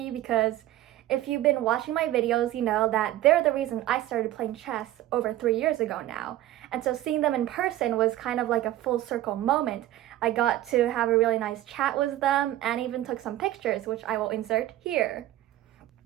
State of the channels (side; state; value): left; quieter; 14.4 dB